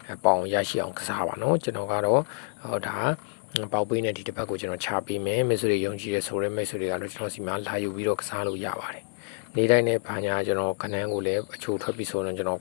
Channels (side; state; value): right; silent; digital silence